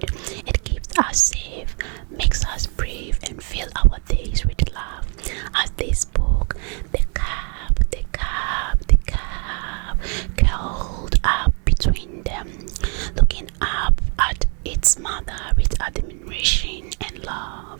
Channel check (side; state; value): left; quieter; 38.0 dB